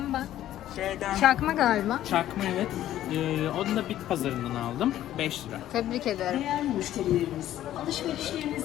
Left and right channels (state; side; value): quieter; right; 12.8 dB